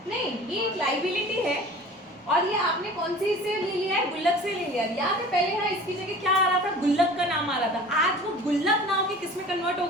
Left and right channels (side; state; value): both; normal; correlation 0.43